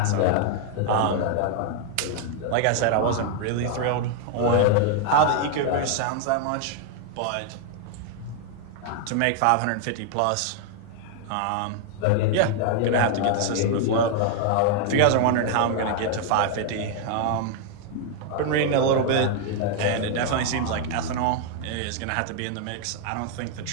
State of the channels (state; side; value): different; both; correlation 0.00